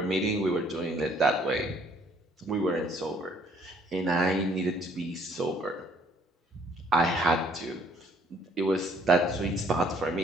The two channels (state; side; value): normal; both; correlation 0.62